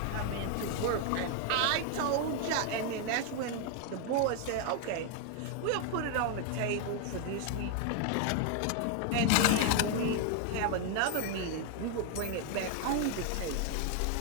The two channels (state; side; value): different; both; correlation 0.00